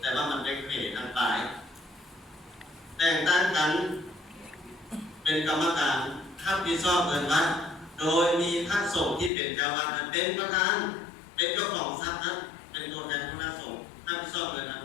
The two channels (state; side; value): drops out; right; at 9.3 s